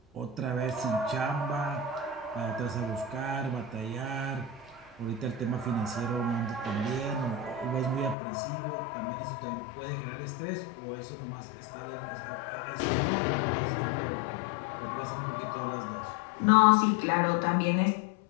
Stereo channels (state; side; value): drops out; right; at 8.2 s